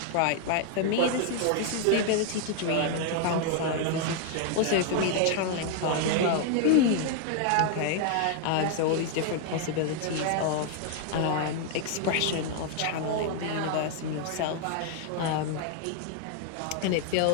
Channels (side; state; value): both; different; correlation 0.00